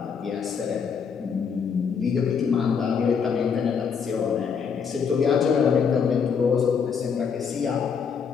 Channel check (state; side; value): quieter; right; 6.5 dB